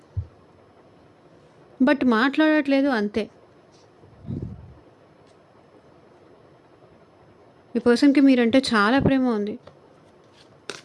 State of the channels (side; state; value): both; identical; correlation 1.00